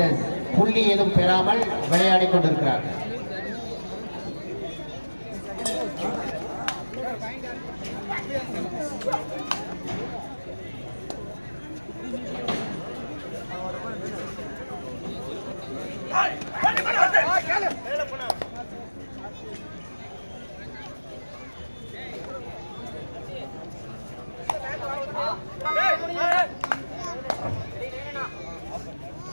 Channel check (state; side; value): inverted; both; correlation -1.00